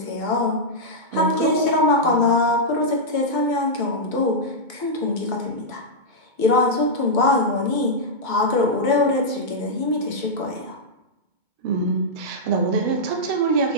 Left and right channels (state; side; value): late; left; 2.2 ms